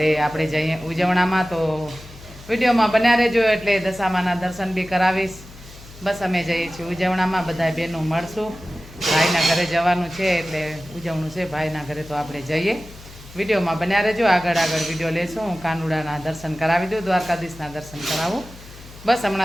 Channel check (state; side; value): noise; left; hum, 18 dB below the sound